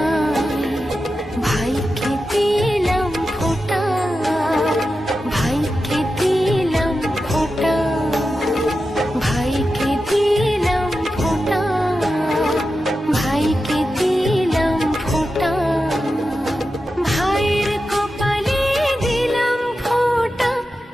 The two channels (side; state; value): both; normal; correlation 0.91